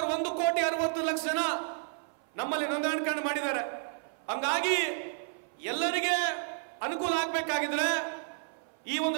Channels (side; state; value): left; silent; 57 dB below the other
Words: 1,60,00,000 ಜನ ನಮ್ಮಲ್ಲಿ ನೋಂದಣಿ ಮಾಡಿದ್ದಾರೆ। ಹಂಗಾಗಿ ಎಲ್ಲರಿಗೆ ಅನುಕೂಲ ಆಗಬೇಕಾಗಿದ್ರೆ ಈ